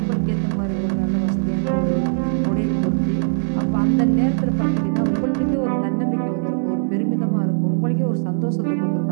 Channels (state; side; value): silent; left; 58 dB below the other